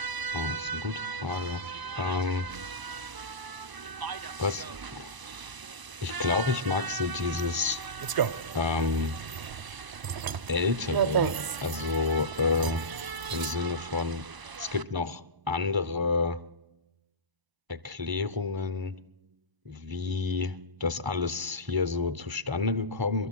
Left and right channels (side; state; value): left; late; 1.0 ms